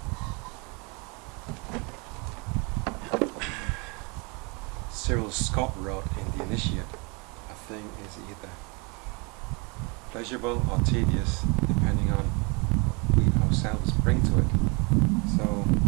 Cyril Scott wrote in The Initiate, a thing is either pleasurable or tedious depending on what we ourselves bring to it. So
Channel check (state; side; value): quieter; left; 30.7 dB